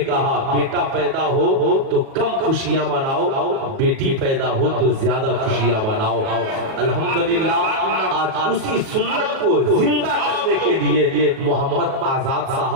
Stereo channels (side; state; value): left; late; 37 ms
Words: بیٹا پیدا ہو تو کم خوشیاں مناؤ، بیٹی پیدا ہو تو زیادہ خوشیاں مناؤ۔ الحمدللہ آج اسی سنت کو زندہ کرنے کے لیے محمد آزاد